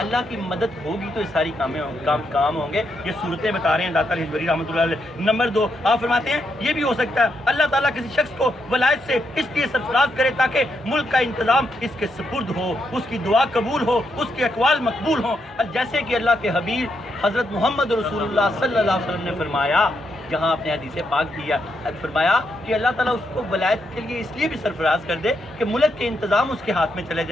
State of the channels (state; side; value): normal; both; correlation 0.80